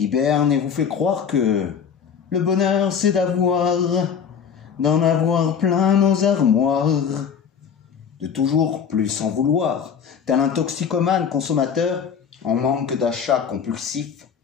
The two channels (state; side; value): quieter; right; 7.2 dB